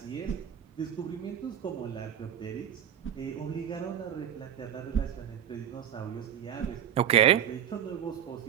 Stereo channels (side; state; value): left; quieter; 9.7 dB